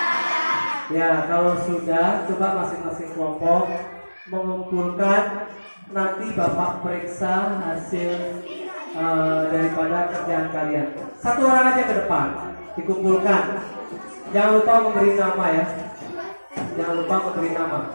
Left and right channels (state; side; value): inverted; both; correlation -1.00